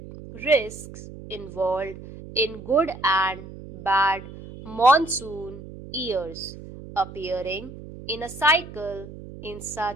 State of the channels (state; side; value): noise; right; hum, 14 dB below the sound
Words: risks involved in good and bad monsoon years appearing in a cycle in